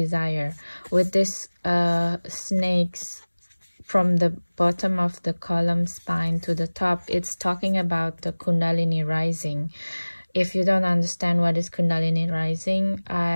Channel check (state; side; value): inverted; both; correlation -1.00